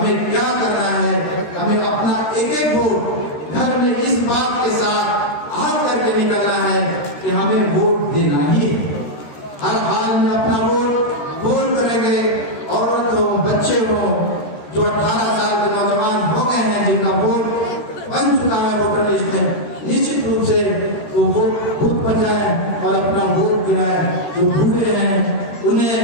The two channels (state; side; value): late; right; 13 ms